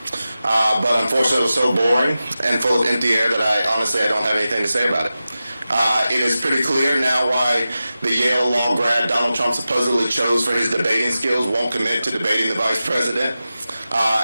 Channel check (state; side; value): inverted; both; correlation -0.94